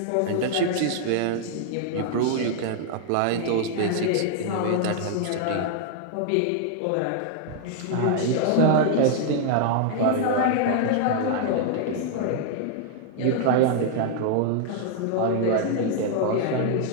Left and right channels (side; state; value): both; different; correlation -0.01